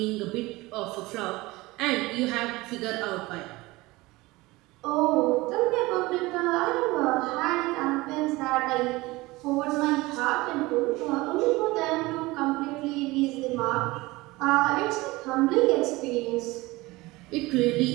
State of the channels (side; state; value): left; quieter; 21.1 dB